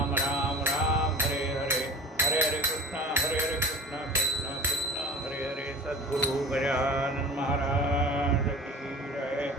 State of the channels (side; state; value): both; normal; correlation 0.39